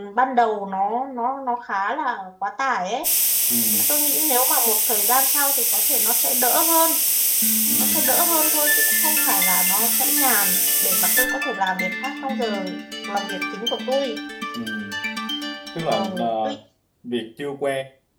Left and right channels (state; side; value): identical; both; correlation 1.00